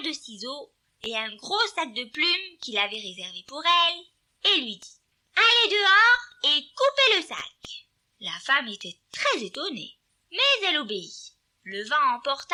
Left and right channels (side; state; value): both; identical; correlation 1.00